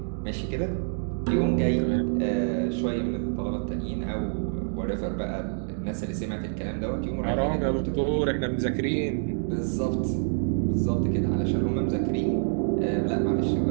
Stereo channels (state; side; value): silent; left; digital silence